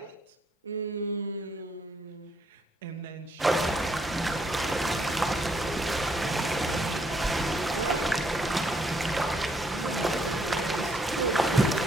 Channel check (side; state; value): both; normal; correlation 0.71